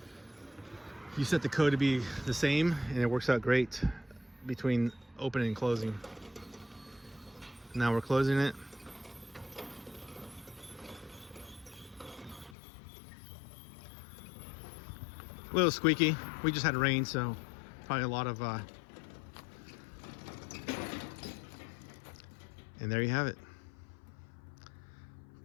you set the code to be the same, and it works out great between opening and closing. Now we're closing it. A little squeaky. We just had rain, so probably a lot of and there you have it.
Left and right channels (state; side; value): drops out; right; at 12.6 s